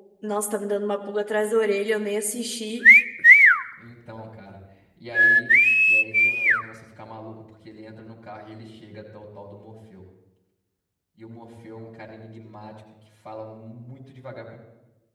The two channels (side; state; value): both; identical; correlation 1.00